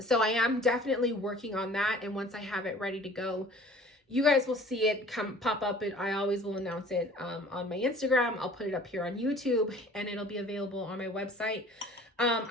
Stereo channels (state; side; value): normal; both; correlation 0.49